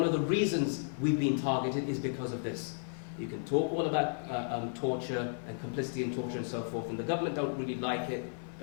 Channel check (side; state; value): right; silent; digital silence